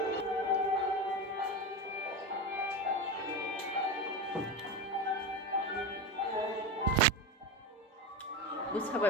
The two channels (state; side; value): normal; both; correlation 0.20